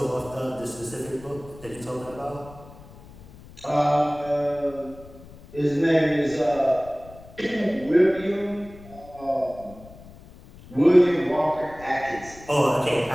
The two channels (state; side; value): noise; left; rumble, 20 dB below the sound